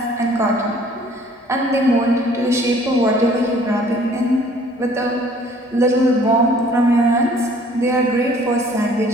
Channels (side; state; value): both; normal; correlation 0.56